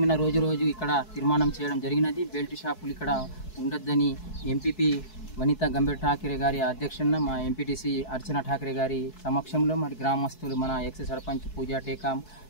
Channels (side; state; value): right; late; 4.7 ms